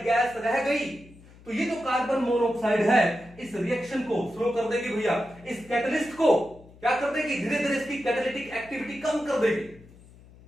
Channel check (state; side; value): noise; left; hum, 23 dB below the sound